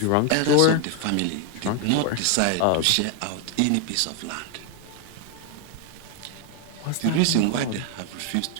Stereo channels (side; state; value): both; different; correlation 0.01